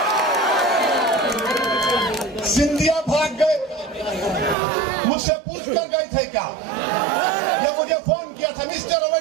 सिंधिया भाग गए, मुझसे पूछ कर गए थे क्या? ये मुझे फोन किया था, mister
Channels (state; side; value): drops out; left; at 4.5 s